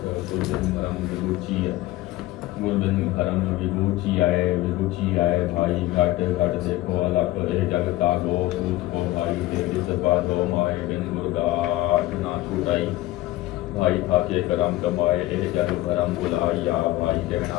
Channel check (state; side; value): quieter; right; 16.7 dB